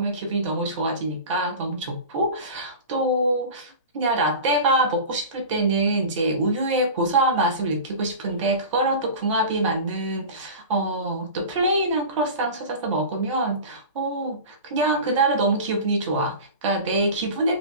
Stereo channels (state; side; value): inverted; both; correlation -0.32